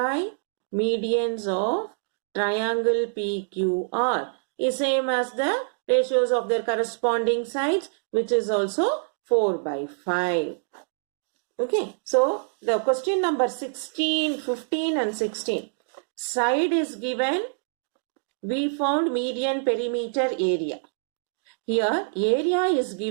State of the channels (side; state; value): left; silent; digital silence